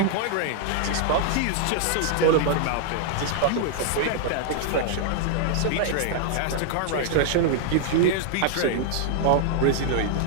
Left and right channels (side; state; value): both; different; correlation 0.00